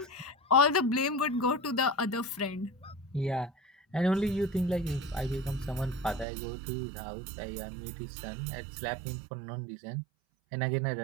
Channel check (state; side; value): drops out; left; at 6.2 s